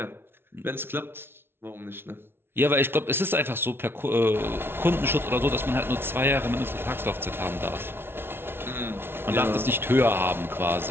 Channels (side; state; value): left; late; 0.11 ms